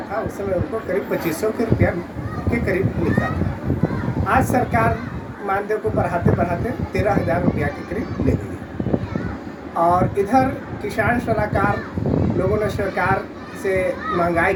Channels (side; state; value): both; identical; correlation 1.00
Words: था। उस समय उनको करीब 2500 के रुपया के करीब मिलता था। आज सरकार मानदेय को बढ़ाते बढ़ाते 13,000 रुपया के करीब ले गई। और इधर किसान सलाहकार लोगों ने सरकार से महंगाई